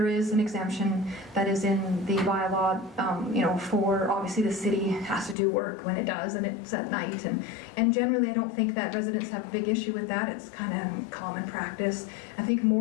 is an exemption that is in the bylaw, you know, for obviously the city has to do work when it does, and it's at night. And generally, I don't think that residents have a big issue with that. It's kind of common practice. I think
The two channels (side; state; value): right; drops out; at 5.4 s